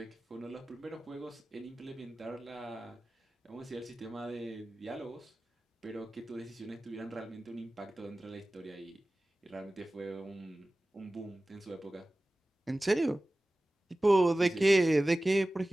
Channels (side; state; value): both; normal; correlation 0.97